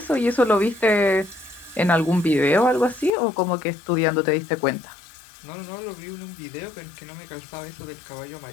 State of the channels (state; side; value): drops out; right; at 3.1 s